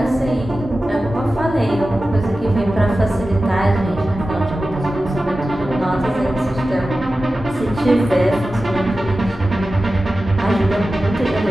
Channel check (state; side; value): normal; both; correlation 0.94